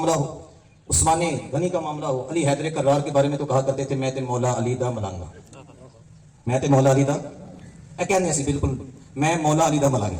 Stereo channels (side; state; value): both; identical; correlation 1.00